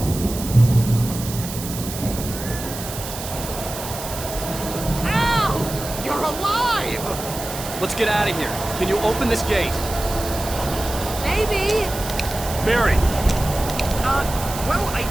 Let's get out of here. Can you open this gate? Maybe. Barry! Well, I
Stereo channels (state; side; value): noise; right; hiss, 9 dB below the sound